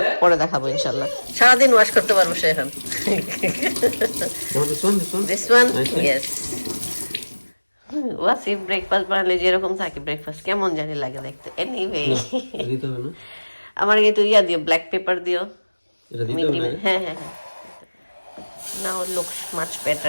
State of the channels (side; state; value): both; inverted; correlation -1.00